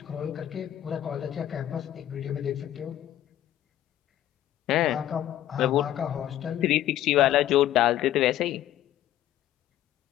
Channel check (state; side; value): quieter; right; 12.5 dB